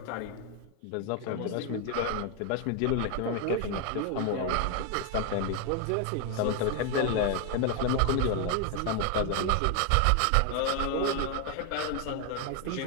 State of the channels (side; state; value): both; different; correlation 0.01